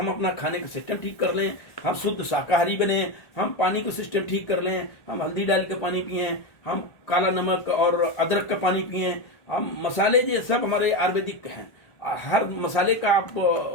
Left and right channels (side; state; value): right; late; 1.4 ms